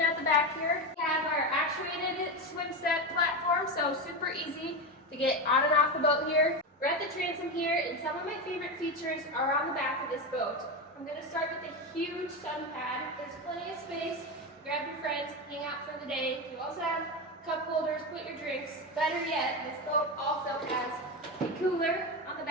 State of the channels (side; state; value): both; normal; correlation 0.16